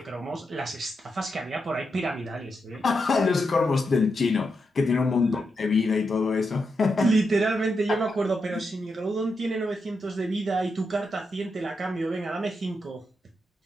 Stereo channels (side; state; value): both; normal; correlation 0.85